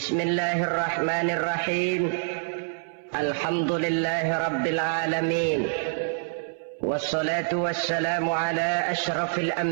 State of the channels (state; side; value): silent; left; 61 dB below the other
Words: Alhamdulillahi rabbil alamin. Wassalatu wassalamu ala ashrafil